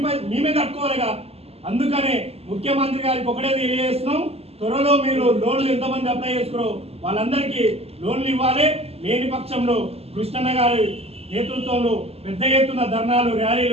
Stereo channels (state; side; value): late; left; 0.29 ms